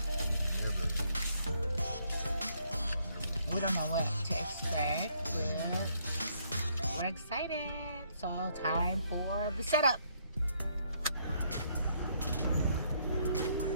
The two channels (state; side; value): inverted; both; correlation -0.70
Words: Never. We don't know what to expect, but we're excited. So time for the setup.